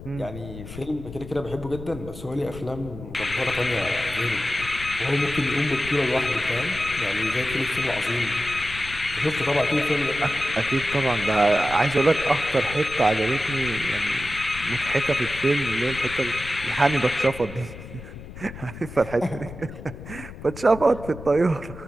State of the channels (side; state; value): left; noise; rumble, 13 dB below the sound